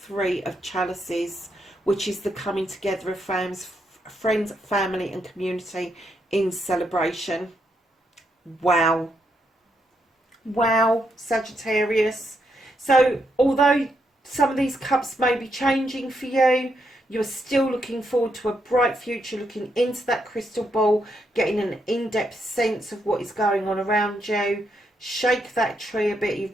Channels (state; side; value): normal; both; correlation 0.79